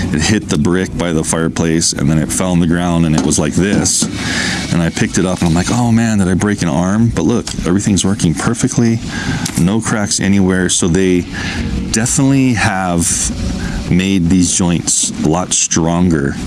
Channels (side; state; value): both; identical; correlation 1.00